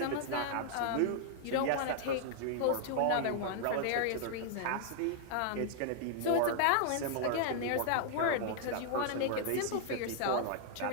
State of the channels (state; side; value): different; both; correlation -0.01